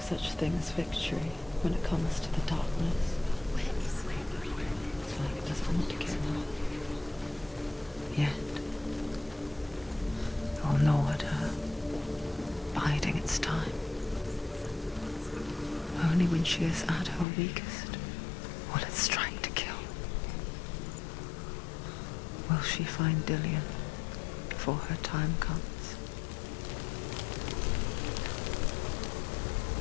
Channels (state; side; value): drops out; right; at 17.2 s